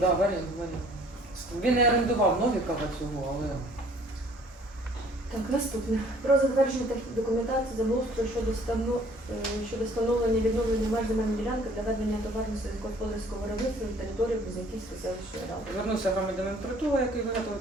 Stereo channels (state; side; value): normal; both; correlation 0.56